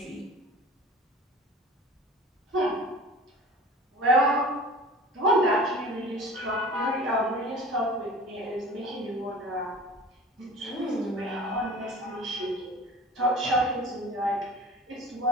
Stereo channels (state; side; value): normal; both; correlation 0.41